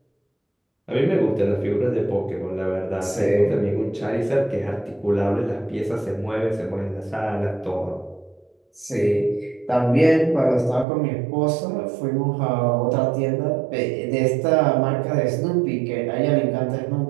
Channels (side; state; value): left; drops out; at 10.9 s